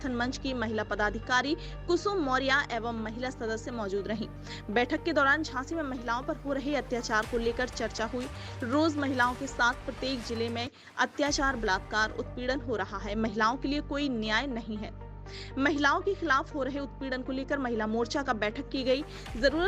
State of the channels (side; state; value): both; identical; correlation 1.00